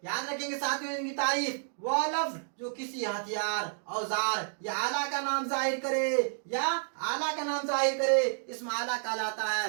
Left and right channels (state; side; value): silent; left; digital silence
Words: یاد رکھیں گے ساتھیوں ان کی تعریف، وہ لفظ جو کسی ہتھیار، اوزار یا آلہ کا نام ظاہر کرے یا آلہ کا نام ظاہر کرے اسم اعلیٰ کہلاتا